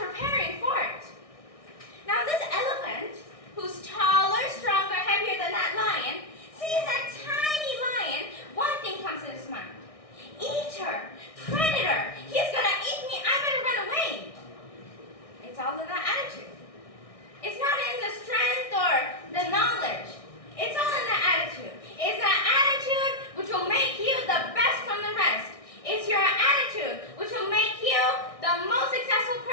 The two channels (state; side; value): late; right; 1.6 ms